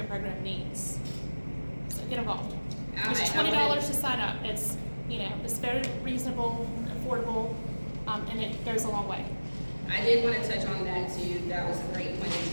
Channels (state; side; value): inverted; both; correlation -1.00